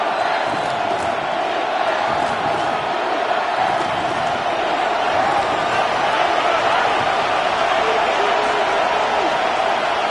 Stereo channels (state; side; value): identical; both; correlation 1.00